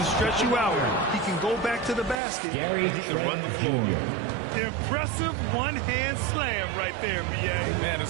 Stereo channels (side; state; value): left; drops out; at 2.1 s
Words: stretch you out. He can go back to the basket. And he can run the floor. Impressive one-hand slam right there, B.A. Man,